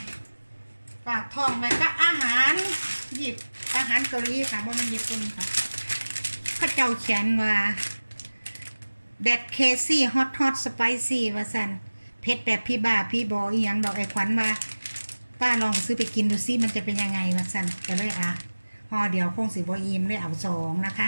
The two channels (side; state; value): both; inverted; correlation -1.00